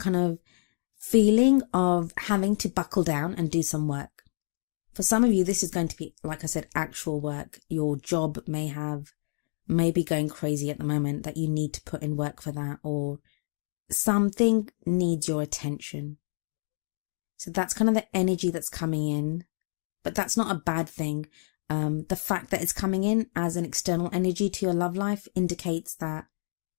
of feeling of having to buckle down and do some work. For some of you, this is going to be, like I said, actual work. Your job may be going crazy at the moment that you need to put in work for that, or something needs your attention. So that's kind of the energy that's coming in, but that's not a bad thing. The fact that it's coming in as an external energy to your love life indicates that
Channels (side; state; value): right; silent; digital silence